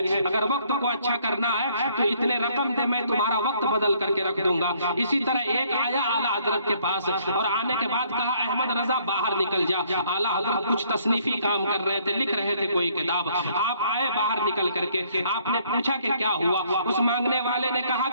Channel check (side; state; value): both; inverted; correlation -0.64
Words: اگر وقت کو اچھا کرنا ہے تو اتنے رقم دے، میں تمہارا وقت بدل کر کے رکھ دوں گا۔ اسی طرح ایک آیا اعلیٰ حضرت کے پاس، اور آنے کے بعد کہا احمد رضا باہر نکل جا۔ اعلیٰ حضرت کچھ تصنیفی کام کر رہے تھے، لکھ رہے تھے کوئی کتاب، آپ آئے باہر نکل کر کے، آپ نے پوچھا کہ کیا ہوا؟ اس مانگنے والے نے کہا